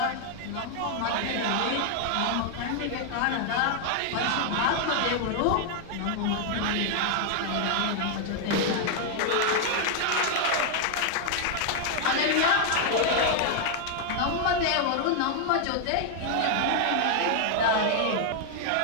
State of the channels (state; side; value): different; both; correlation 0.00